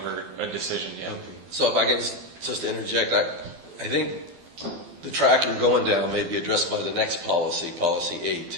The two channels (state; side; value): late; left; 12 ms